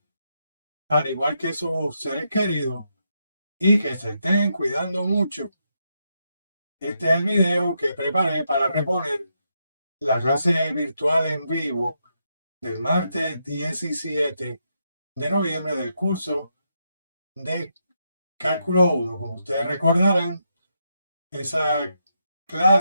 al igual que sus seres queridos, y que se estén cuidando mucho. Este es el video que preparé para reponer la clase virtual en vivo del martes 17 de noviembre del curso de Cálculo 1. Como ustedes recordarán, esa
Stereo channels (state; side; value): inverted; both; correlation -0.81